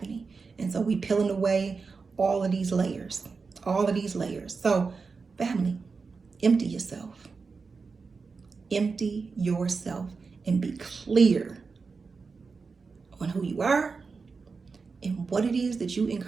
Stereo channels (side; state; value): left; quieter; 4.7 dB